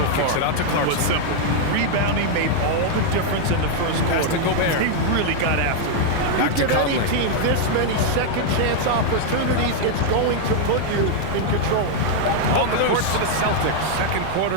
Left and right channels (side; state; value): both; different; correlation 0.00